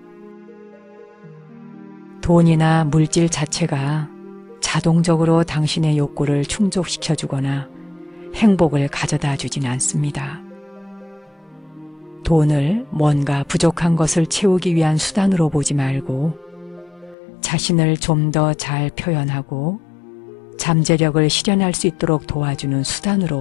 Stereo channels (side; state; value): right; drops out; at 17.2 s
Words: 돈이나 물질 자체가 자동적으로 당신의 욕구를 충족시켜주거나 행복을 가져다 주진 않습니다. 돈을 뭔가 부족한 것을 채우기 위한 수단으로 보지 말고 자신을 좀 더 잘 표현하고 잠재력을 실현할 수 있도록 도와주는